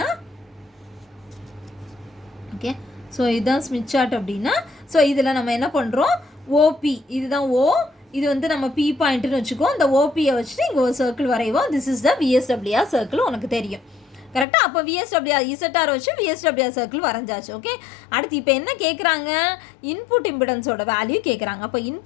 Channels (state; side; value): drops out; right; at 14.5 s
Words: ஓகே ஸோ இதுதான் ஸ்மித் சார்ட் அப்படின்னா ஸோ இதில் நம்ம என்ன பண்ணுறோம் ஓபி இதுதான் இது வந்து நம்ம பி பாயிண்ட்டுன்னு வச்சுக்கோ. இந்த ஓபியை வச்சுட்டு இங்கே ஒரு சர்க்கிள் வரைவோம். This is the VSWR circle உனக்கு தெரியும் கரெக்டாக. அப்போ விஎஸ்டபிள்யூஆர் இசட்டார் வச்சு விஎஸ்டபிள்யூஆர் சர்க்கிள் வரைஞ்சாச்சு. ஓகே அடுத்து இப்போ என்ன கேட்குறாங்க இன்புட் இம்பிடன்ஸோட வேல்யூ கேட்குறாங்க. அப்போ